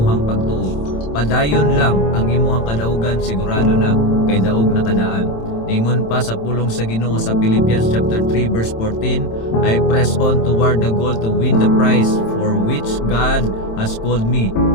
pagtuo, padayon lang ang imuhang kadaugan, sigurado na kay daog na kadaan. Ingon pa sa pulong sa Ginoo sa Philippians chapter 3 verse 14, I press on toward the goal to win the prize for which God has called me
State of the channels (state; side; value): late; right; 27 ms